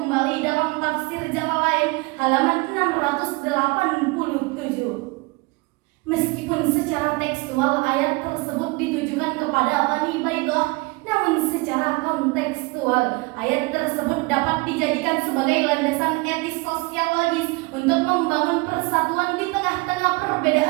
dalam tafsir Jalalain halaman 687. Meskipun secara tekstual ayat tersebut ditujukan kepada Bani Baidah, namun secara kontekstual ayat tersebut dapat dijadikan sebagai landasan etis sosiologis untuk membangun persatuan di tengah-tengah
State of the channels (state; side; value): quieter; left; 25.9 dB